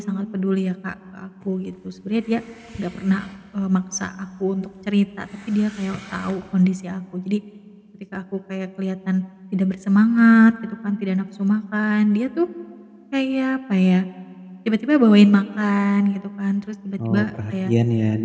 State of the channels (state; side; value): identical; both; correlation 1.00